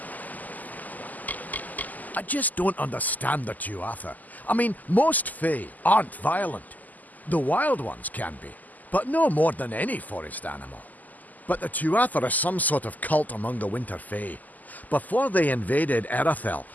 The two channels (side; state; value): right; late; 0.081 ms